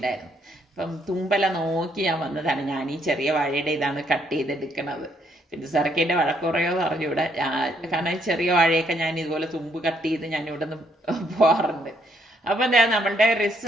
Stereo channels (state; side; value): normal; both; correlation 0.71